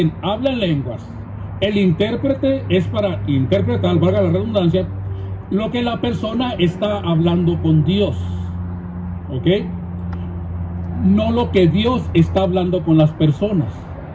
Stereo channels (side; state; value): both; identical; correlation 1.00